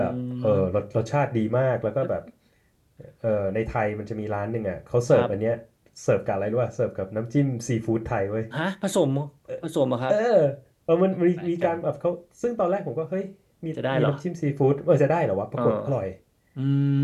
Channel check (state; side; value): identical; both; correlation 1.00